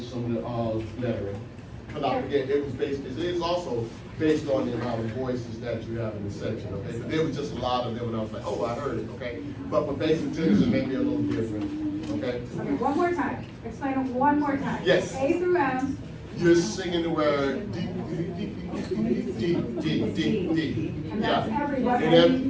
some of the lettering. Because I forget, it is also based on the amount of voices that you have in the section, okay? But there was just a lot of them, and I was like, oh, I heard it, okay? But for basic tenors, it may be a little different, okay? Okay, one more time. Explain it one more time. Yes. A through M. You're singing the word D, D, D, D, D. And Yeah. that's everybody, And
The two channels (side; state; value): both; identical; correlation 1.00